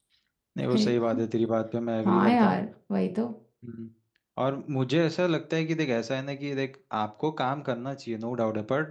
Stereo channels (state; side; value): identical; both; correlation 1.00